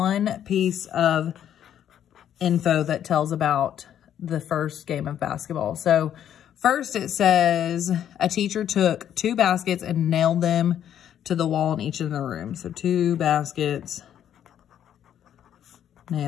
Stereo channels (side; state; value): right; quieter; 10.1 dB